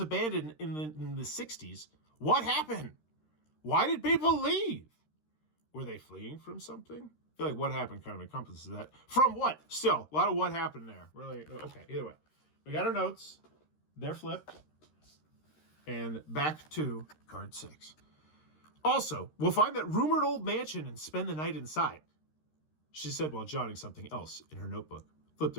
in the 60s. What happened? Why did people leave? Were they fleeing from something? I feel like what happened kind of encompasses that. From what? Still, a lot of what happened there. Really, okay, either way. We got our notes. They're flipped. And back to card 6. Also, we'll find that rumored old mansion and spend the night inside. She said while jotting something else in her notebook. Flip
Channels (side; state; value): right; late; 13 ms